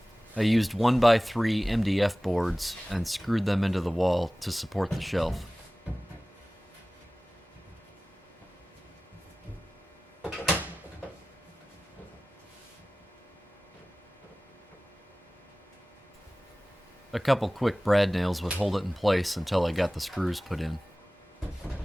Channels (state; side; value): normal; both; correlation 0.97